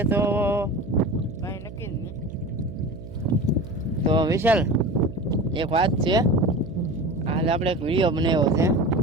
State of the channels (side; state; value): right; noise; hum, 14 dB below the sound